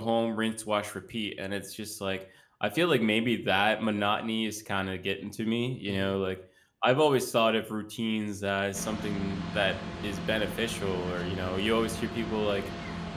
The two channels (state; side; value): identical; both; correlation 1.00